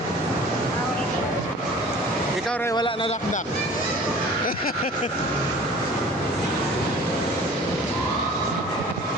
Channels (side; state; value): both; normal; correlation 0.45